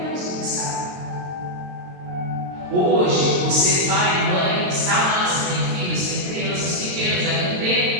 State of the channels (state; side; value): late; left; 22 ms